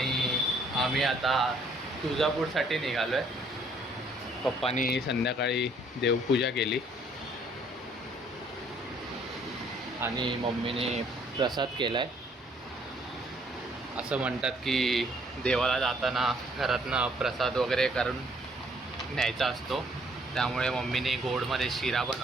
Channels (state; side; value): normal; both; correlation 0.63